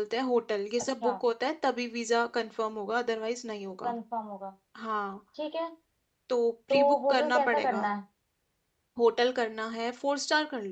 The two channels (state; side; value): identical; both; correlation 1.00